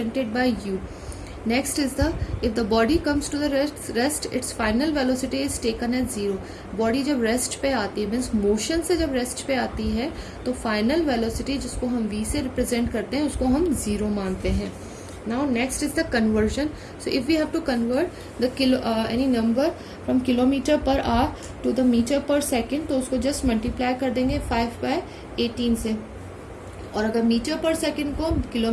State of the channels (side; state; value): both; identical; correlation 1.00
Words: by u. Next is the if the body comes to the rest its final velocity is taken as 0. Body जब rest पे आती है मीन्स मोशन से जब रेस्ट पे आती है तो फाइनल वेलोसिटी जिसको हम v से रिप्रेजेंट करते हैं उसको हम 0 मानते हैं. Now next is the conversion. So if we have to convert the kilo any number from kilometre per hour to the metre per second तो उसको जस्ट मल्टीप्लाई कर देंगे 5/18 से. और अगर मीटर पर सेकेंड को